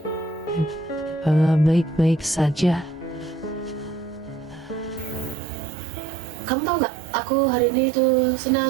ini? Baik-baik saja. Kamu tahu nggak? Aku hari ini tuh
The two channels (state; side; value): drops out; left; at 5.4 s